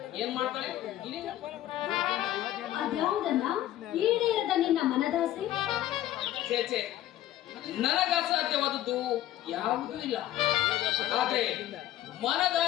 ಏನ್ ಮಾಡ್ತಾಳೆ? ಅದ್ಯಾವುದನ್ನ ಈಡೇರದ ನಿನ್ನ ಮನದಾಸೆ? ಚೇಚೆ, ನನಗ ಅಸಾಧ್ಯವಾದದ್ದು ಯಾವುದೂ ಇಲ್ಲ. ಆದ್ರೆ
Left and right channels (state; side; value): quieter; right; 13.4 dB